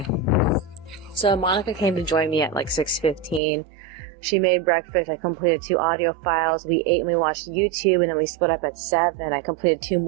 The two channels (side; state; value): left; drops out; at 3.4 s